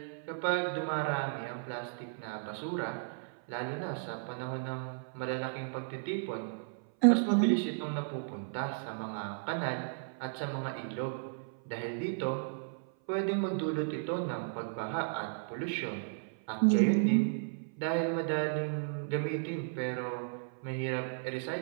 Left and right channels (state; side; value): silent; left; 55 dB below the other